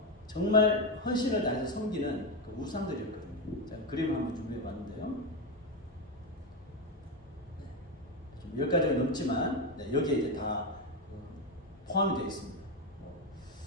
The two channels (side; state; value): both; normal; correlation 0.11